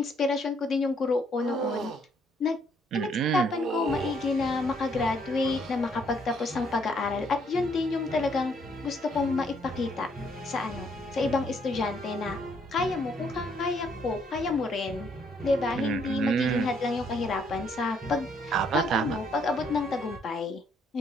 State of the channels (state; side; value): normal; both; correlation 0.69